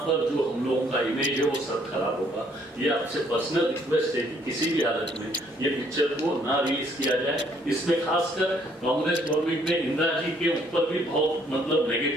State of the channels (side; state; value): both; normal; correlation 0.65